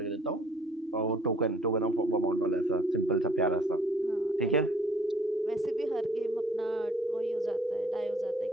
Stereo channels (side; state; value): both; normal; correlation 0.58